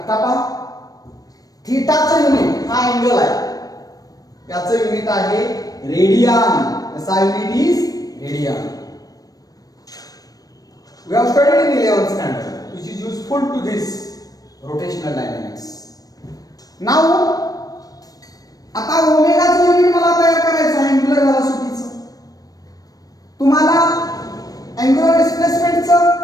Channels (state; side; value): late; right; 0.18 ms